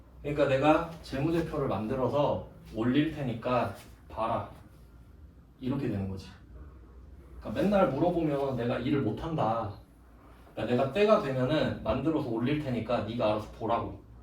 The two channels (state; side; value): identical; both; correlation 1.00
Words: 그러니까 내가 재무제표를 만들어서 올릴 테니까 봐라. 이렇게 되는 거지. 그러니까 맨날 물어보면 내가 일을 못한다. 그러니까 내가 때가 되면은 만들어서 올릴 테니까 네가 알아서 보라고.